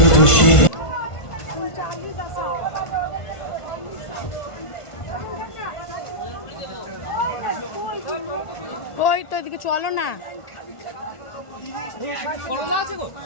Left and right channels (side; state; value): right; late; 1.5 ms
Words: ওই তো এদিকে চলো না,